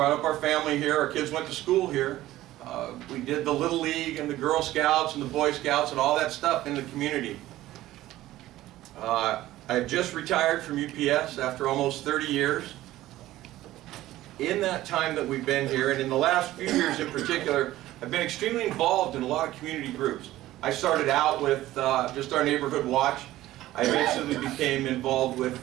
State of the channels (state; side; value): quieter; left; 15.4 dB